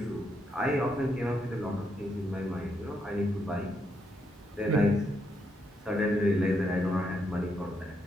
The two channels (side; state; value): both; normal; correlation 0.78